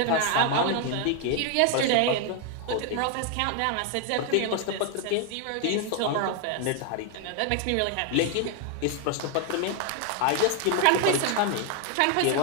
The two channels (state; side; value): different; both; correlation 0.00